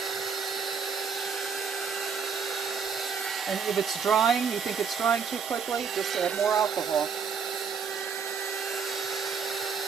And if it's drying, you think it's drying too quickly, just add more alcohol.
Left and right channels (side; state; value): left; quieter; 6.2 dB